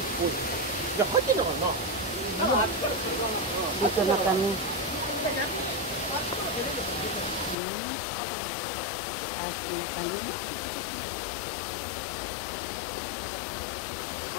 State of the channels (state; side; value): drops out; right; at 7.6 s